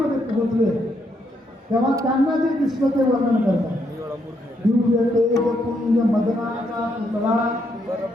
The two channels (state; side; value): normal; both; correlation 0.76